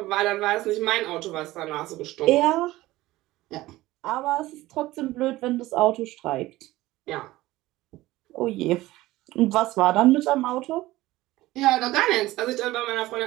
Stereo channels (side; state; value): left; quieter; 17.5 dB